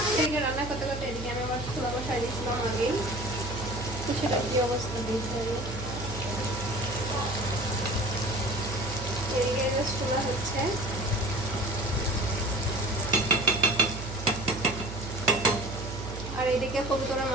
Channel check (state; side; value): noise; right; hum, 8 dB below the sound